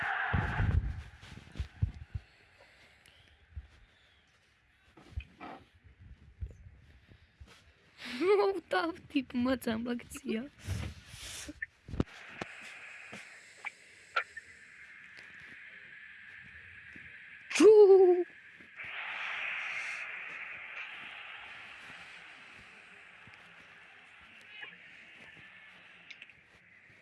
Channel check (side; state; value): both; identical; correlation 1.00